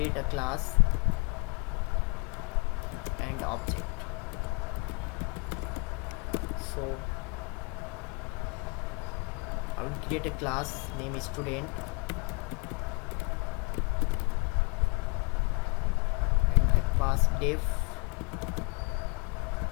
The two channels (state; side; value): quieter; right; 30.4 dB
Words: a class and object. So I will create a class, name is student, and I pass def